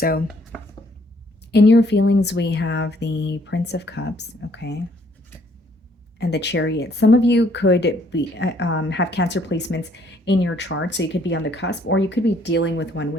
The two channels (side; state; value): both; normal; correlation 0.65